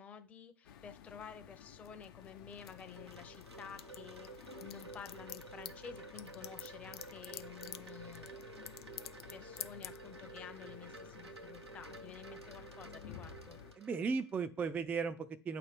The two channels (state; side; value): normal; both; correlation 0.52